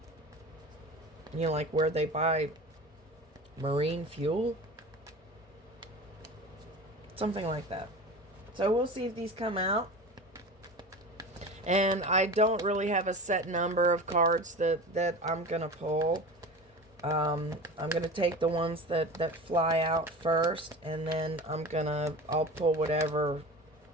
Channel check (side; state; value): both; normal; correlation 0.33